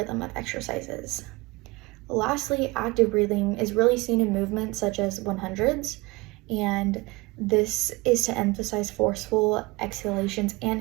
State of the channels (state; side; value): quieter; left; 23.8 dB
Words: of exercises. Lastly, active breathing is really seen in movements such as 100s, and this is to emphasize forceful exhalations and